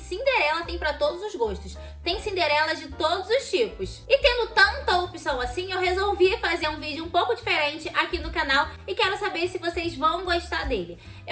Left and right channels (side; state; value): both; identical; correlation 1.00